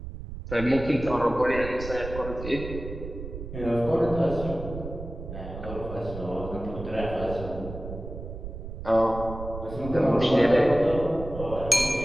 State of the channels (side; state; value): right; noise; rumble, 9 dB below the sound